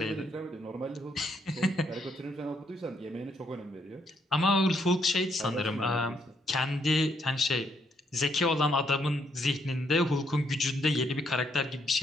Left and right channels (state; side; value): normal; both; correlation 0.73